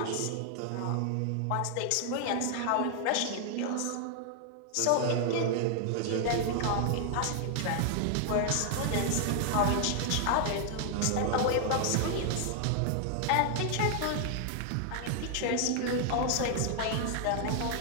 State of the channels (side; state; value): both; different; correlation 0.00